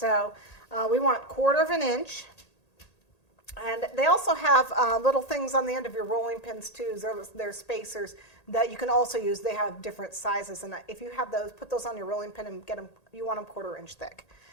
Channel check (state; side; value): late; right; 1.8 ms